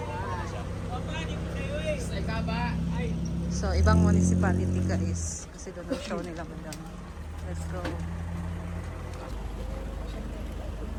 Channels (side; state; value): both; identical; correlation 1.00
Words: So, ibang municipality guys. Kasi doon ang show nila madam. Let's go.